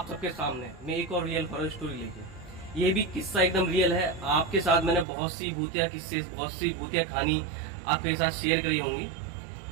सबके सामने मैं एक और रियल हॉरर स्टोरी लेके। ये भी किस्सा एकदम रियल है। आपके साथ मैंने बहुत सी भूतिया किस्से, बहुत सी भूतिया कहानी आपके साथ शेयर करी होंगी।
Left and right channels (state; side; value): drops out; left; at 5.1 s